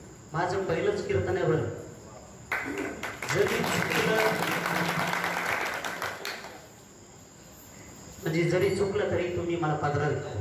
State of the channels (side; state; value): both; identical; correlation 1.00